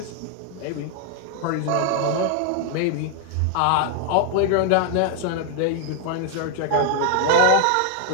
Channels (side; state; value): both; different; correlation 0.00